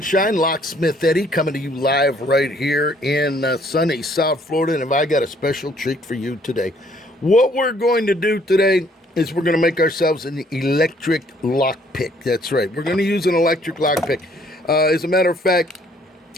Locksmith Eddy, coming to you live right here in sunny South Florida, and I got a special treat for you today. What we're going to do today is we're going to make ourselves an electric lock pick. That's right. We're going to use an electric lock pick. As a matter of fact,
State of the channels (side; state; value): both; normal; correlation 0.63